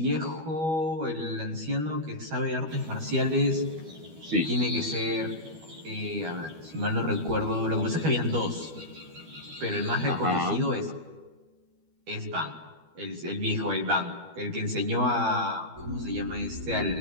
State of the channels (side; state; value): left; late; 12 ms